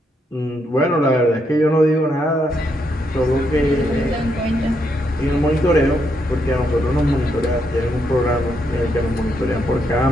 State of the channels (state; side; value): normal; both; correlation 0.78